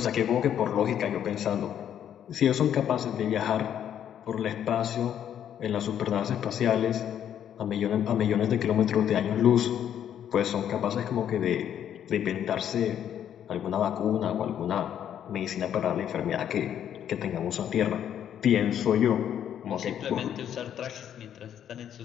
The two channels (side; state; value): right; quieter; 9.7 dB